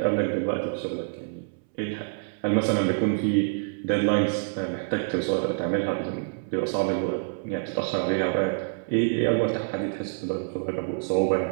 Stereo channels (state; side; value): silent; left; 60 dB below the other